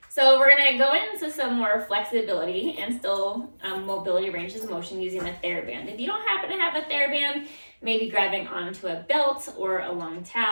So we're going to go into some more flexibility and still mobility ranges of motion using the Thera band. If you don't happen to have a Thera band, maybe grabbing onto a belt or a long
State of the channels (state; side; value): inverted; both; correlation -1.00